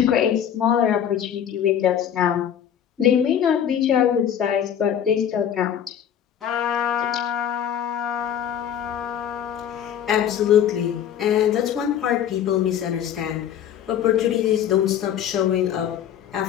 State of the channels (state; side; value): quieter; right; 9.4 dB